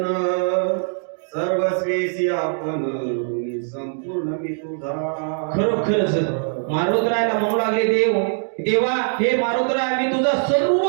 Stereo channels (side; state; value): left; silent; digital silence